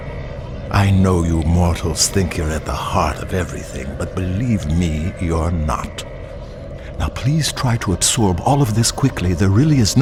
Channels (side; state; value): both; identical; correlation 1.00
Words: I know you mortals think you're at the heart of everything, but believe me, you're not. Now please try to absorb all of this quickly. There really is